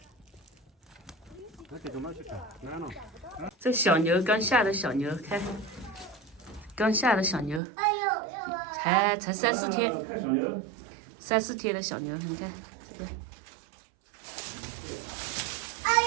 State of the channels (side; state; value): left; drops out; at 7.6 s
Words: 这小牛刚下的小牛，看，刚下的小牛，才3、4天，3、4天的小牛，你看这个。